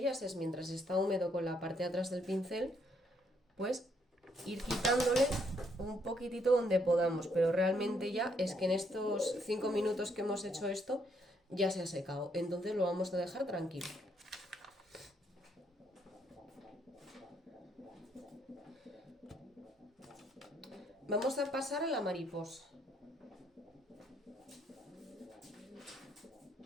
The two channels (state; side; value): normal; both; correlation 0.71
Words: es mientras está húmedo con la parte de atrás del pincel, pues ir quitándole un poquitito donde podamos. Pero realmente ya es que en estos 5 minutos que hemos hecho esto ya se ha secado. Entonces lo vamos a dejar tranquilo. Vamos a pasar a la mariposa.